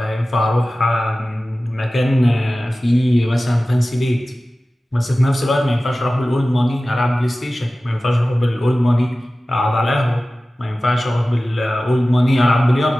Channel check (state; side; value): normal; both; correlation 0.96